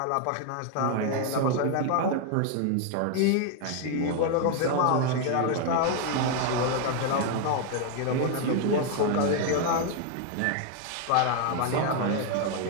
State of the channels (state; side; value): different; both; correlation 0.01